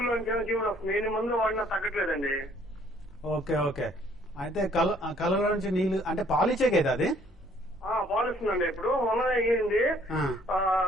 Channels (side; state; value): both; normal; correlation 0.61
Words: నుంచి జీవుడు వస్తుంది. ఎన్ని మందులు వాడినా తగ్గట్లేదండి. Okay okay. అయితే కళ్ళ నుంచి నీళ్లు అంటే పాలిచ్చే కదా అది? పాలిస్తుందండి. ఇప్పుడు మొన్న అయ్యింది,